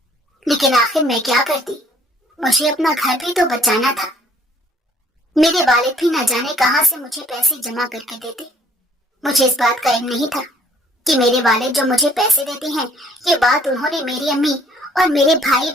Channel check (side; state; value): both; normal; correlation 0.60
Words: لیکن آخر میں کیا کرتی، مجھے اپنا گھر بھی تو بچانا تھا۔ میرے والد بھی نہ جانے کہاں سے مجھے پیسے جمع کر کے دیتے۔ مجھے اس بات کا علم نہیں تھا کہ میرے والد جو مجھے پیسے دیتے ہیں یہ بات انہوں نے میری امی اور میرے بھائی